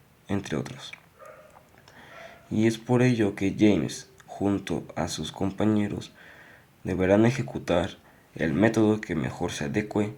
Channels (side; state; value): both; identical; correlation 1.00